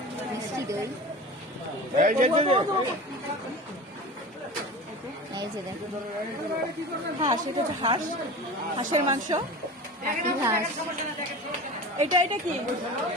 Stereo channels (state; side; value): normal; both; correlation 0.33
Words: মিষ্টি দই। এই যে দেখো হাঁস, এটা হচ্ছে হাঁস, হাঁসের মাংস। পাতি হাঁস, এটা এটা কি?